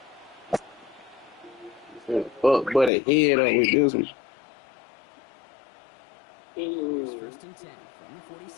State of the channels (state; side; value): drops out; right; at 2.9 s